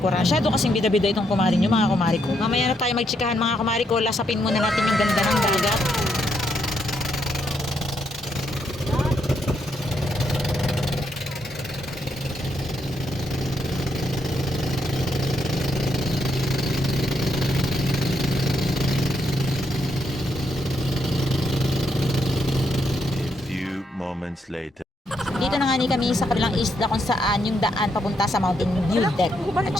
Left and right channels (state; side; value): normal; both; correlation 0.77